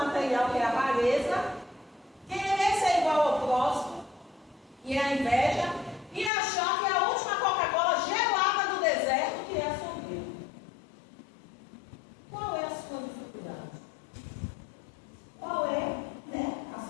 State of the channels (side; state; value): right; drops out; at 6.3 s